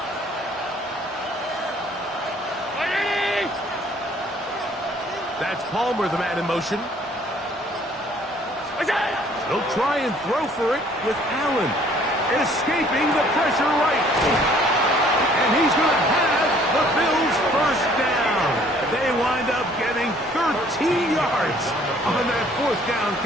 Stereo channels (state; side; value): normal; both; correlation 0.58